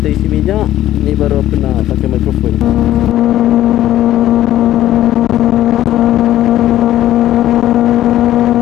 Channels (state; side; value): quieter; right; 13.4 dB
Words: isi minyak. Ni baru aku nak pakai mikrofon.